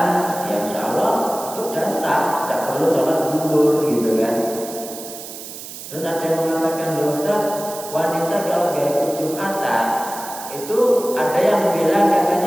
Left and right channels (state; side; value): noise; right; hiss, 12 dB below the sound